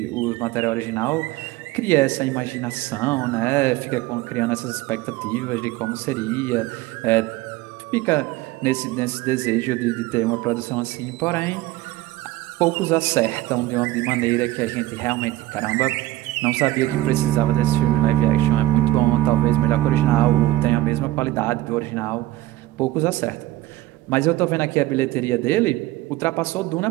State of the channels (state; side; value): quieter; left; 16.6 dB